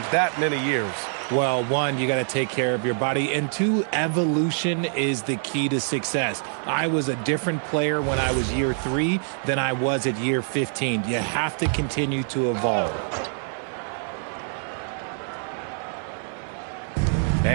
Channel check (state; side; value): silent; left; 62 dB below the other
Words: that many years? Well, one, you got to take care of your body, and two, evolution is the key to success. I was a different player when I was year 3 than I was at year 15. You have to continue to evolve.